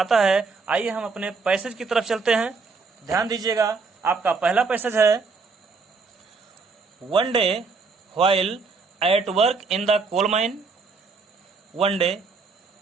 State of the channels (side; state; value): left; quieter; 4.5 dB